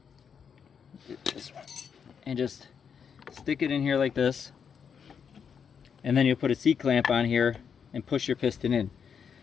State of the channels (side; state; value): right; quieter; 7.0 dB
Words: this one, and just stick it in here like this. And then you'll put a C-clamp on here and push your piston in.